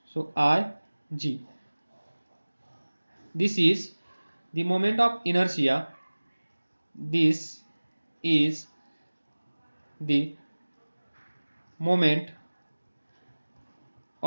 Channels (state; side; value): inverted; both; correlation -1.00